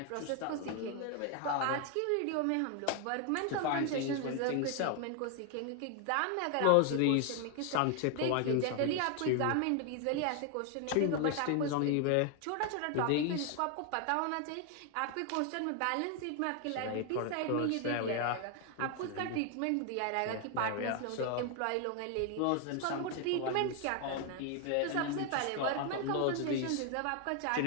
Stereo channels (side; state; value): both; different; correlation 0.01